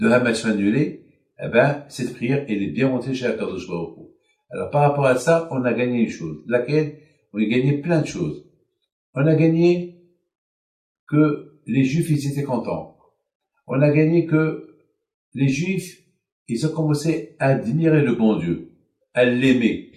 Hamas soient annulés, eh ben, cette prière, elle est bien montée chez Akadosh Baruch Hu. Alors, par rapport à ça, on a gagné une chose. Laquelle? On a gagné plein de choses. On a gagné que les Juifs, ils étaient contents. On a gagné que les Juifs, ils ont commencé à admirer le bon Dieu, à l'aimer.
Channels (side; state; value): both; identical; correlation 1.00